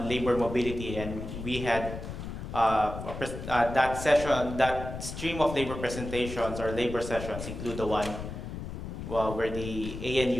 labor mobility, and we had that session, that stream of labor presentations or labor sessions include the one where the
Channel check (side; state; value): left; noise; rumble, 8 dB below the sound